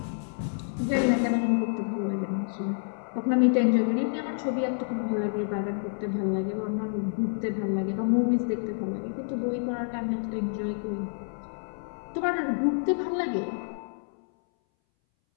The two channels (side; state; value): right; silent; 59 dB below the other